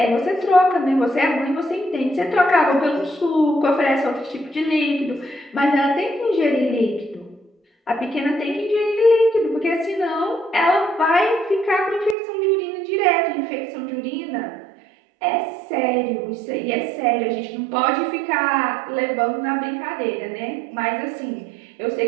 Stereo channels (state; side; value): drops out; left; at 12.2 s